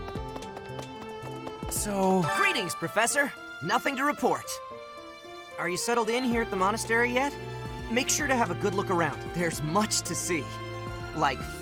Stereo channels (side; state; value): both; identical; correlation 1.00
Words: So... Greetings, Professor. Nothing to report. Are you settled in here at the monastery yet? Make sure to have a good look around. There's much to see. Like